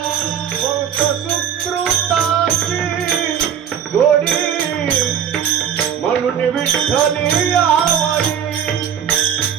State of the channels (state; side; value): quieter; left; 8.6 dB